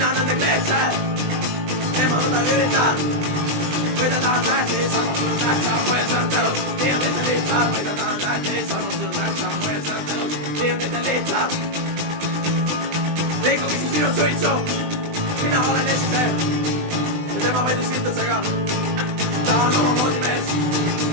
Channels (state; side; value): late; left; 20 ms